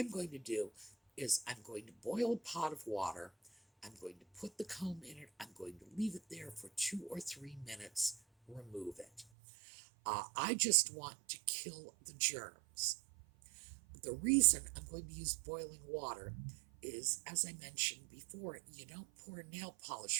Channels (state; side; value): drops out; left; at 9.2 s